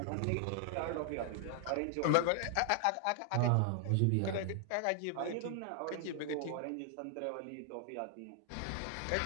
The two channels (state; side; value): different; both; correlation 0.00